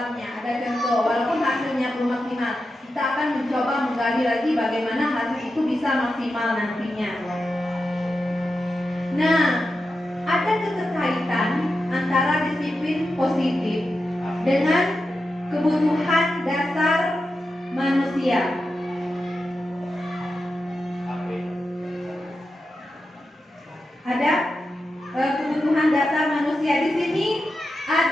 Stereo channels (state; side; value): normal; both; correlation 0.90